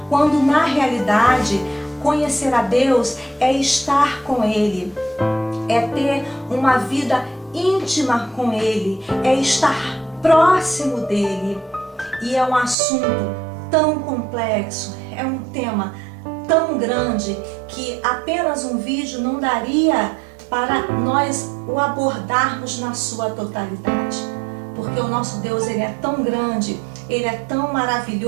Quando na realidade, conhecer a Deus é estar com Ele, é ter uma vida íntima com Ele, é estar próximo dEle. E é um assunto tão complexo, é um tema tão grande que apenas um vídeo não daria para nós o abordarmos na sua totalidade. Porque o nosso Deus ele é tão grande, ele é tão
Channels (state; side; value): drops out; left; at 12.8 s